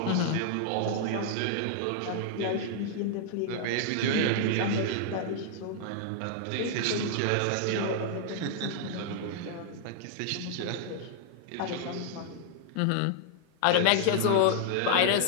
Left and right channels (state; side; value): different; both; correlation -0.01